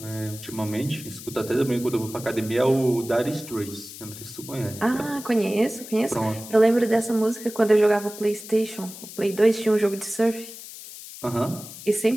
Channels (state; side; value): noise; left; hiss, 14 dB below the sound